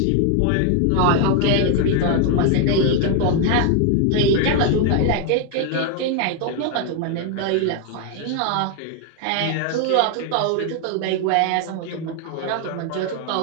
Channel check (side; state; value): both; different; correlation 0.01